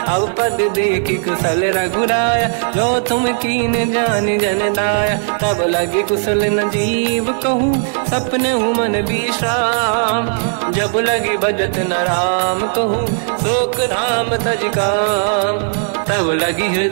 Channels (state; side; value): silent; left; 69 dB below the other